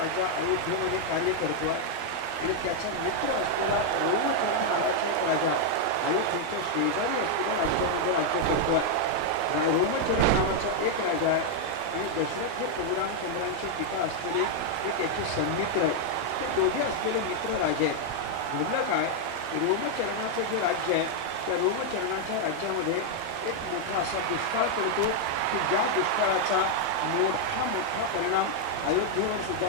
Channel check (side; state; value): both; different; correlation 0.00